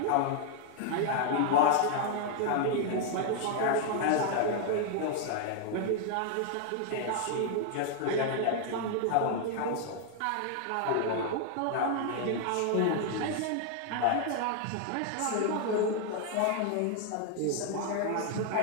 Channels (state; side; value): different; both; correlation 0.00